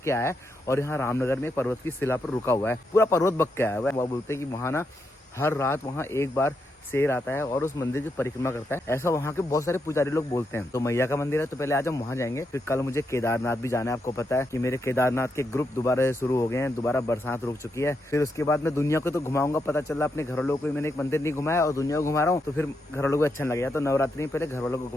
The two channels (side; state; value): both; normal; correlation 0.82